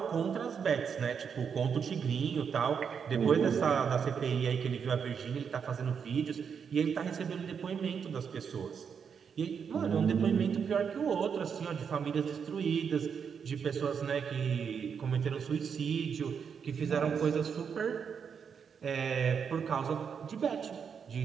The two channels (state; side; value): quieter; left; 6.8 dB